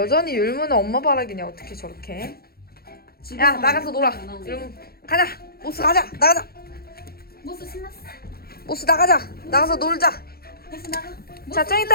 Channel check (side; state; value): right; late; 0.44 ms